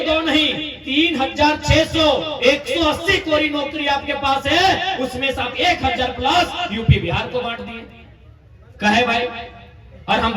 नहीं 3600 180 कोरी नौकरी आपके पास है, उसमें से आप 1000 प्लस यूपी बिहार को बांट दिए। कहे भाई और हम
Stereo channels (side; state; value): both; identical; correlation 1.00